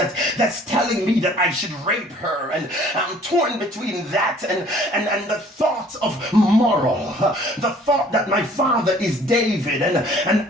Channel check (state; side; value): normal; both; correlation 0.55